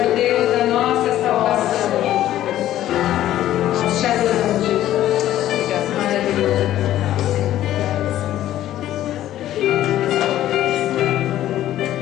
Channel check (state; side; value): quieter; right; 13.1 dB